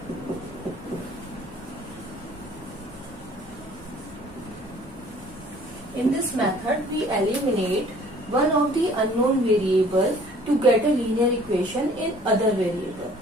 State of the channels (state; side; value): normal; both; correlation 0.53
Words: In this method we eliminate one of the unknown variable to get a linear equation in other variable.